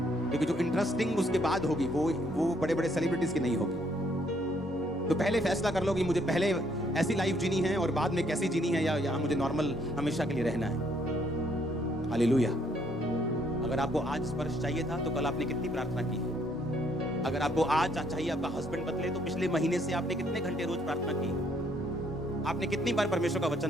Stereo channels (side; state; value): both; normal; correlation 0.68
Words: क्योंकि जो इंटरेस्टिंग उसके बाद होगी वो बड़े बड़े सेलिब्रिटीज की नहीं होगी। तो पहले फैसला कर लो कि मुझे पहले ऐसी लाइफ जीनी है और बाद में कैसी जीनी है, या मुझे नॉर्मल हमेशा के लिए रहना है। हालेलुया। अगर आपको आज स्पर्श चाहिए था तो कल आपने कितनी प्रार्थना की है? अगर आपको आज चाहिए आपका हस्बैंड बदले तो पिछले महीने से आपने कितने घंटे रोज प्रार्थना की? आपने कितनी बार परमेश्वर का